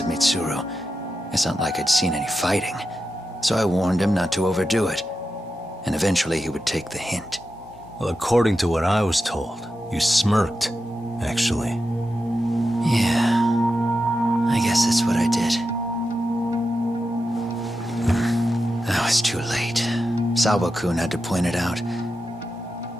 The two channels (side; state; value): both; normal; correlation 0.89